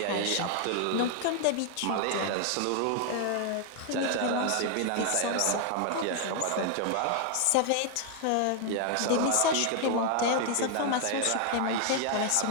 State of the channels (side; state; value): both; different; correlation 0.00